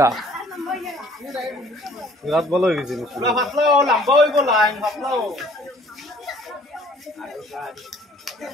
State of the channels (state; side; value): normal; both; correlation 0.55